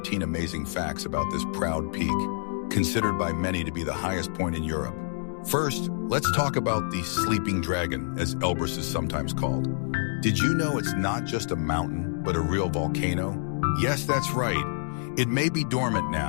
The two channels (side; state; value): right; silent; digital silence